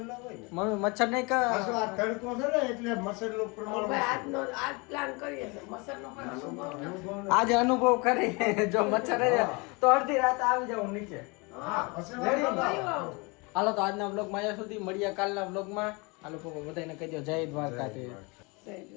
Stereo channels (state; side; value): quieter; right; 28.3 dB